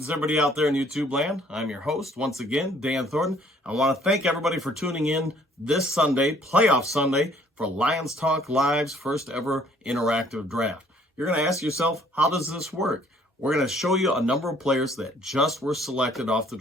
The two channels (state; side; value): normal; both; correlation 0.60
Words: everybody out there in YouTube land. I'm your host, once again, Dan Thornton. I want to thank everybody for tuning in this Sunday, Playoff Sunday, for Lions Talk Live's first ever interactive draft. You're going to ask yourself, how does this work? We're going to show you a number of players that just were selected off the